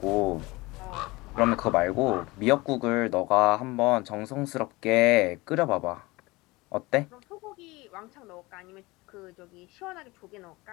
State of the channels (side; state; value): right; quieter; 22.4 dB